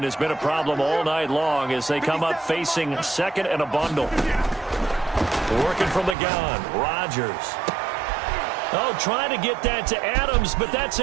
has been a problem all night long as they come up facing 2nd and a bundle. Working from the gun, Rodgers. Oh, trying to get that to Adams, but that's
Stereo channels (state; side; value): drops out; left; at 6.2 s